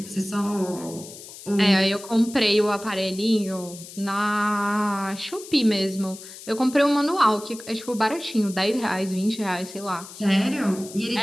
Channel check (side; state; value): left; noise; hiss, 15 dB below the sound